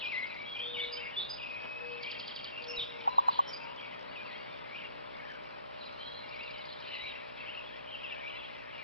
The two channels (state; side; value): inverted; both; correlation -0.56